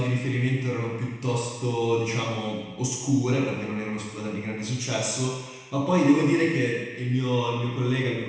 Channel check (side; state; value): both; identical; correlation 1.00